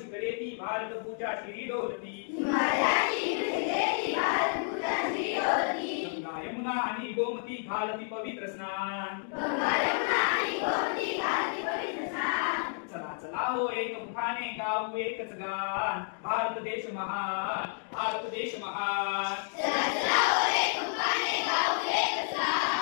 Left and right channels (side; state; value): right; silent; 57 dB below the other